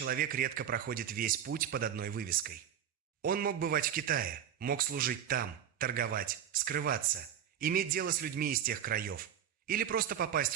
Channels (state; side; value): quieter; left; 9.5 dB